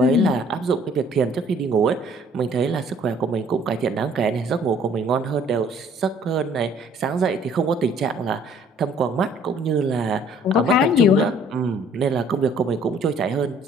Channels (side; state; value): both; normal; correlation 0.58